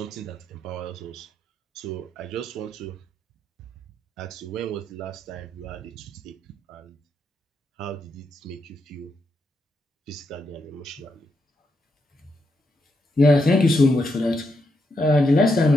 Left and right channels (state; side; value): normal; both; correlation 0.81